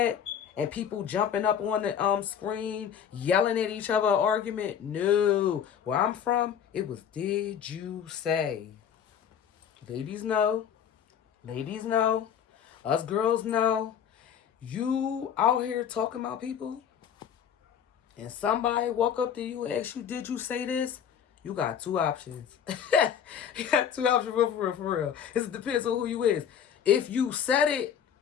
and people jumping up on the screen, yelling at each other, argument, no. Where I'm from, it was did you say. Ladies know. Ladies know. Us girls know. You out here talking about people, and somebody walk up to you and ask you, did you say this? You got two options. You got two options for real, for real. It depends on who you is. If you said it,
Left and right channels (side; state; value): right; quieter; 8.5 dB